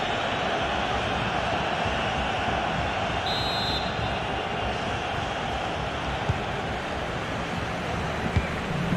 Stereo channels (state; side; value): identical; both; correlation 1.00